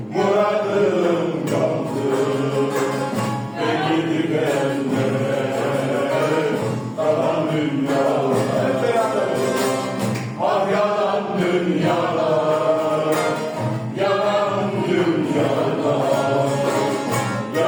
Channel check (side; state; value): both; identical; correlation 1.00